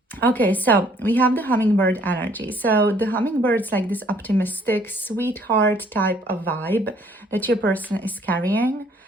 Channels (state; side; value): normal; both; correlation 0.61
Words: Okay, so we have the Hummingbird energy. So the Hummingbird's like this optimistic, sweetheart type of vibe that your person is carrying.